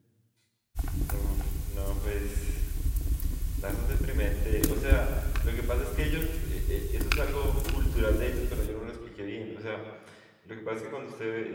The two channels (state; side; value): identical; both; correlation 1.00